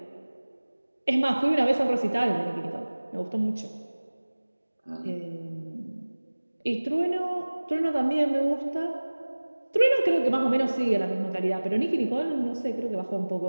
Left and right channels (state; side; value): inverted; both; correlation -1.00